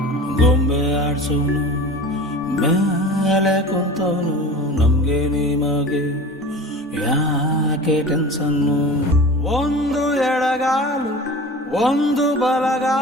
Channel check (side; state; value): both; normal; correlation 0.36